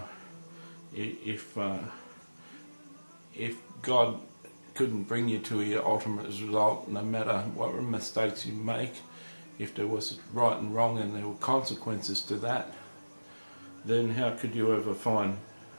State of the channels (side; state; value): both; inverted; correlation -1.00